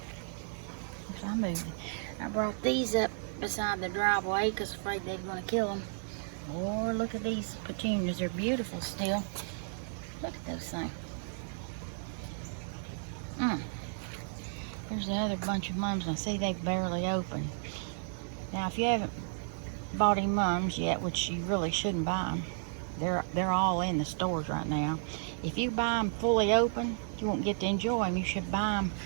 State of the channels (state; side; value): silent; left; digital silence